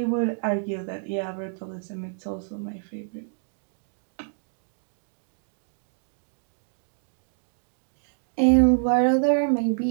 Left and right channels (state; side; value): silent; left; digital silence